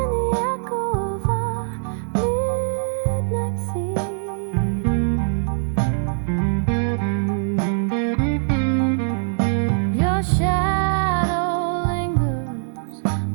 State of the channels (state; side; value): silent; left; digital silence